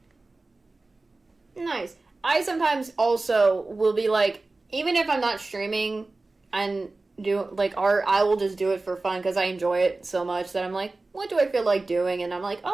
Nice. I sometimes also will be like, even if I'm not streaming and do like art, I will just do it for fun because I enjoy it so much that I'm like, what do I feel like doing? And I'm like,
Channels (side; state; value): left; quieter; 3.3 dB